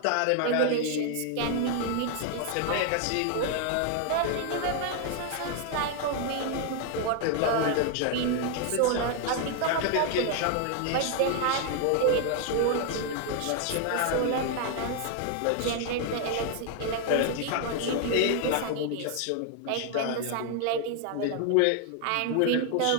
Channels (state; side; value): different; both; correlation 0.00